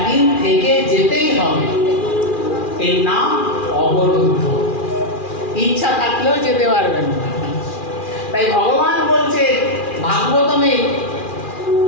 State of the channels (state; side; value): late; right; 2.4 ms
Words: থেকে যেতেই হবে। এর নাম অবরুদ্ধ, ইচ্ছা থাকলেও যেতে পারবেন না। তাই ভগবান বলছে ভাগবতমে,